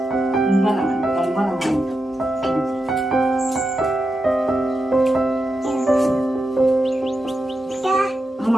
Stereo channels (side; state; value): both; normal; correlation 0.88